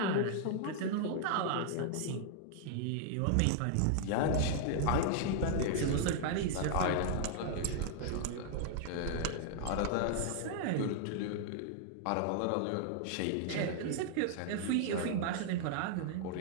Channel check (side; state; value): both; different; correlation -0.01